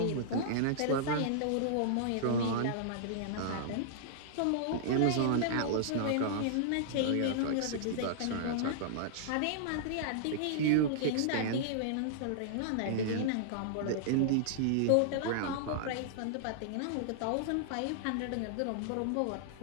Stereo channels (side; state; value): both; different; correlation -0.02